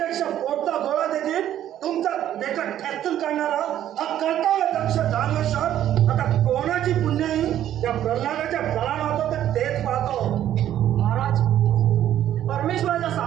पोटचा गोळा देखील तुमचा देखत ठेचून काढणारा हा कर्तव्य दक्ष दानवेश्वर आता कोणाची पुण्याई त्या प्रल्हादाच्या फळाला होतो तर तेच पाहतो. महाराज, परमेश्वराच्या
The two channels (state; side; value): quieter; left; 11.6 dB